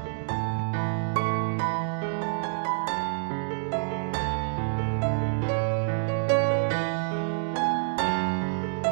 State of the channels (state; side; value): silent; left; digital silence